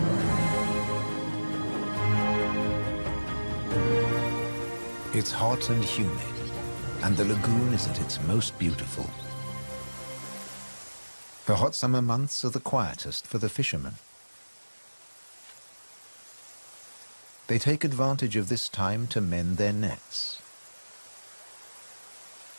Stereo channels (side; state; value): both; inverted; correlation -1.00